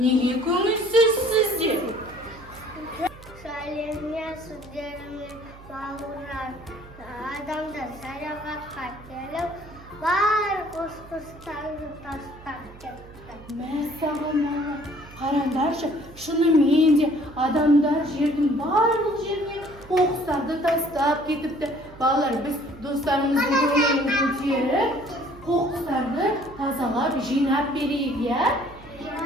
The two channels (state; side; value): noise; right; hum, 20 dB below the sound